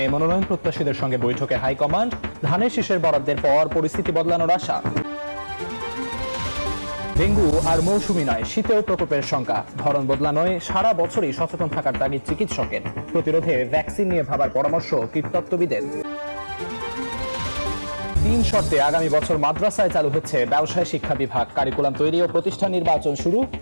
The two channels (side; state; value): both; inverted; correlation -1.00